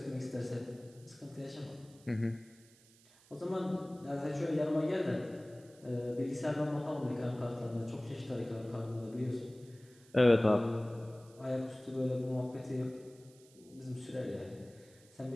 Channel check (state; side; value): noise; right; hiss, 26 dB below the sound